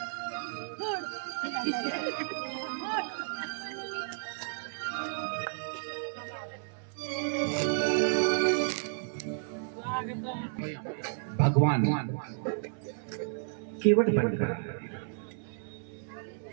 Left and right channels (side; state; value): left; silent; 56 dB below the other